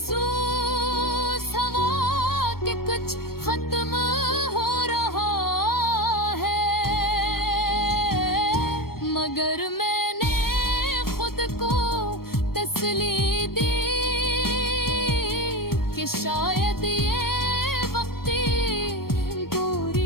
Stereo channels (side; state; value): right; late; 0.94 ms